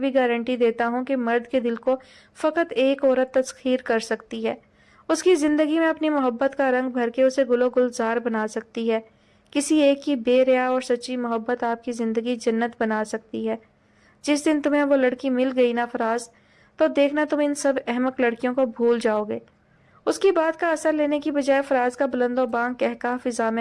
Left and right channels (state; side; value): identical; both; correlation 1.00